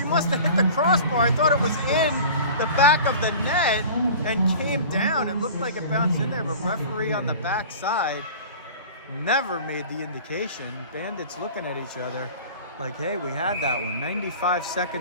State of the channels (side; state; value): both; inverted; correlation -0.40